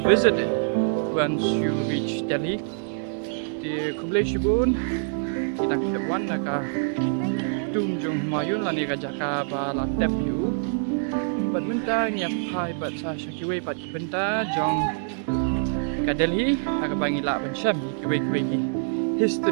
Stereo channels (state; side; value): silent; left; 61 dB below the other